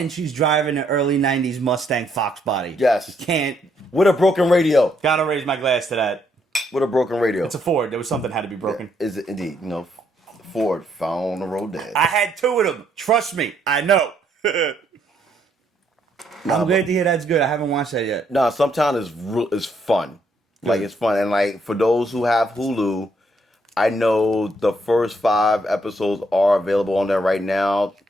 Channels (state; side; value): normal; both; correlation 0.72